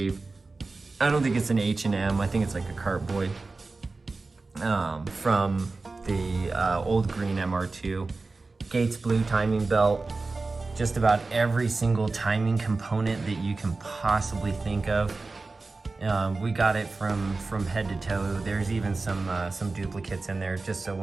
I don't think it's an H&M, I think it's like a Cartboy. From the old green MR2. Gates blue timing belt. Just about every single timing component that you can possibly think of. We got it from head to toe. There's even some duplicates in there, just so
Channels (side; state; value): left; quieter; 3.7 dB